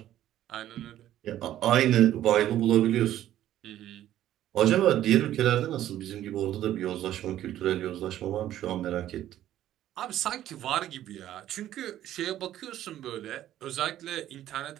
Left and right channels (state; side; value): quieter; left; 12.6 dB